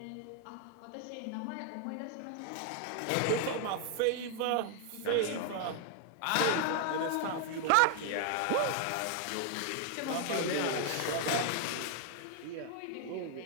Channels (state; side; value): different; both; correlation 0.00